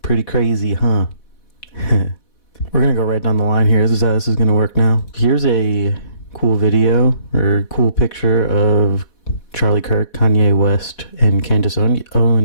Pretty crazy, huh? We're going to go right down the line here. This is how this is going to work now. Here's a cool video or cool picture of Charlie Kirk, Kanye West, and Candace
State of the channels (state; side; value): late; right; 4.1 ms